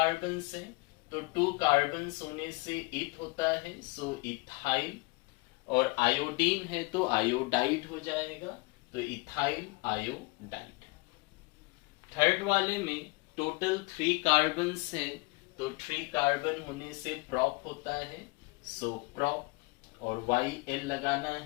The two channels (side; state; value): right; quieter; 26.1 dB